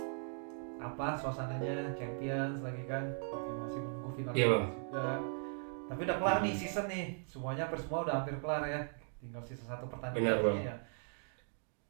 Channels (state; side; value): silent; left; 52 dB below the other